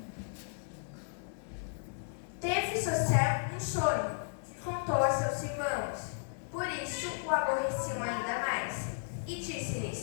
Teve José um sonho que contou a seus irmãos. Por isso o aborreciam ainda mais. E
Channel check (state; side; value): silent; right; digital silence